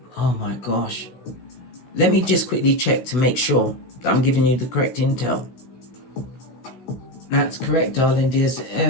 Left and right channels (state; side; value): late; right; 16 ms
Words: my gosh. Let me just quickly check to make sure that I'm giving you the correct intel. That's correct, darling dears.